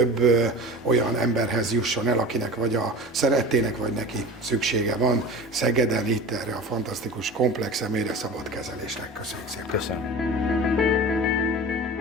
olyan emberhez jusson el, akinek vagy a szerettének, vagy neki szüksége van Szegeden itt erre a fantasztikus komplex személyre szabott kezelésnek. Köszönjük szépen! Köszönöm!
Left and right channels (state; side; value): normal; both; correlation 0.33